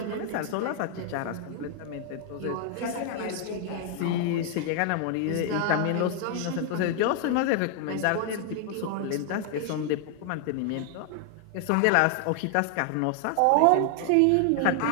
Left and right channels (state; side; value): different; both; correlation 0.00